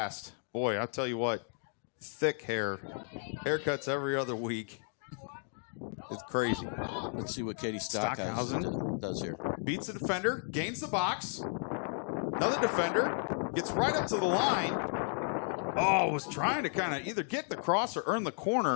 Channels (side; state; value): right; silent; 55 dB below the other